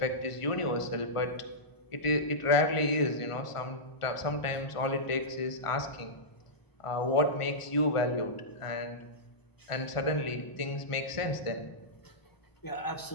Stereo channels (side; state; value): right; late; 1.4 ms